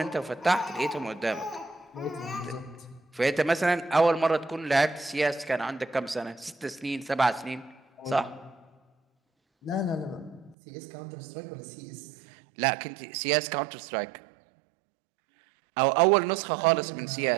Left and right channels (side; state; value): left; drops out; at 10.6 s